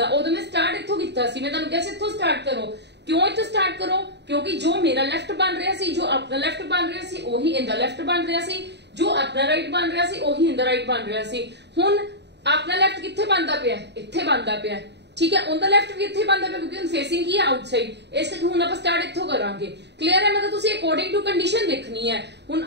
उदो मैं स्टार्ट इथों कीता सी। मैं तुहानू कहा सी इथों स्टार्ट करो। क्यों इथों स्टार्ट करो? क्योंकि जो मेरा लेफ्ट बन रहा सी, जो अपना लेफ्ट बन रहा सी, ओही इंदा लेफ्ट बन रहा सी, जो अपना राइट बन रहा सी, ओही इंदा राइट बन रहा सी। हुण अपना लेफ्ट कित्थे बनदा पिया? इत्थे बनदा पिया। ठीक है, उनका लेफ्ट भी इत्थे बनदा पिया क्योंकि उन फेसिंग की है आउटसाइड, इस करके हुण आपां स्टार्ट इत्थों करांगे। क्लियर है? मतलब तुसी अकॉर्डिंग टू कंडीशन देखनी है। हुण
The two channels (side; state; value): left; late; 0.50 ms